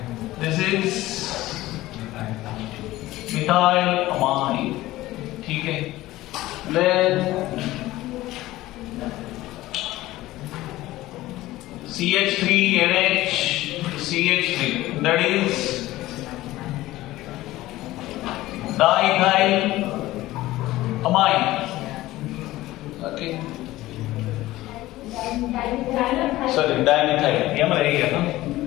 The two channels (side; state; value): right; quieter; 16.9 dB